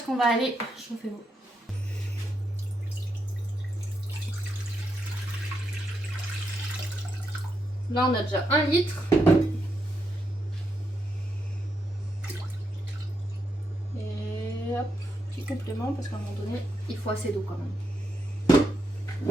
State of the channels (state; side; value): normal; both; correlation 0.82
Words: qu'on va aller chauffer l'eau. Là on a déjà 1 litre. Et hop, petit complément parce qu'à un moment donné, il faut assez d'eau quand même.